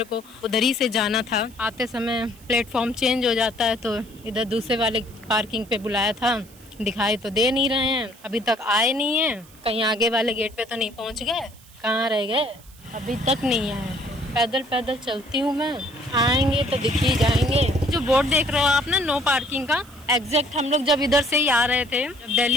को उधर ही से जाना था। आते समय प्लेटफॉर्म चेंज हो जाता है, तो इधर दूसरे वाले पार्किंग पे बुलाया था। दिखाई तो दे नहीं रहे हैं, अभी तक आए नहीं हैं। कहीं आगे वाले गेट पे तो नहीं पहुंच गए, कहाँ रह गए, अभी तक नहीं आए। पैदल पैदल चलती हूँ मैं, आएंगे तो दिख ही जाएंगे। जो बोर्ड देख रहे हो आप ना, नो पार्किंग का, एग्जैक्ट हम लोग जब इधर से ही आ रहे थे, जब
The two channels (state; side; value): noise; right; hiss, 24 dB below the sound